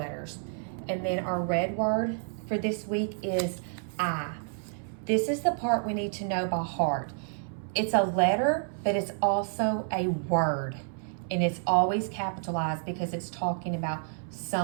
And then our red word for this week is I. This is the part we need to know by heart. It's a letter, but it's also a word. And it's always capitalized because it's talking about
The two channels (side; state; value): left; silent; 58 dB below the other